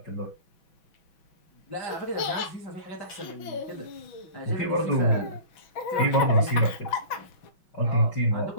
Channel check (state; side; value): late; right; 6.1 ms